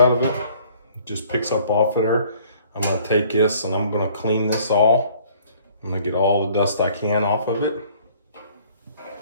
of it, it just picks up off of there. I'm gonna take this and I'm gonna clean this all. I'm gonna get all the dust I can off of it.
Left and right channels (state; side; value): inverted; both; correlation -0.56